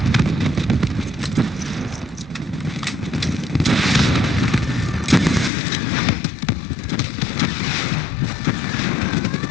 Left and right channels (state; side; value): drops out; right; at 5.5 s